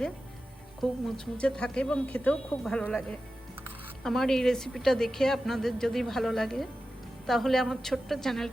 খুব মুচমুচে থাকে এবং খেতেও খুব ভালো লাগে। আমার এই রেসিপিটা দেখে আপনাদের যদি ভালো লাগে তাহলে আমার ছোট্ট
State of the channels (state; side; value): normal; both; correlation 0.93